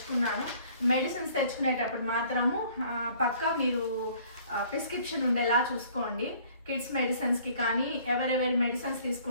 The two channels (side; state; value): both; inverted; correlation -0.56